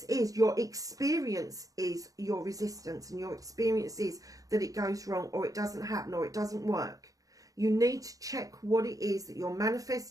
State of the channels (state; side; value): late; left; 0.17 ms